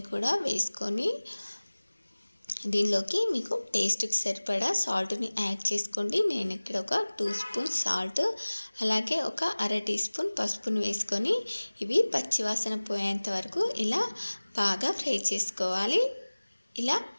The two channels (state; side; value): inverted; both; correlation -1.00